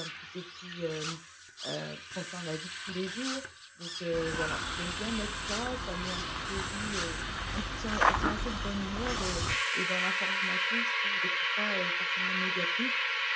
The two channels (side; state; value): both; identical; correlation 1.00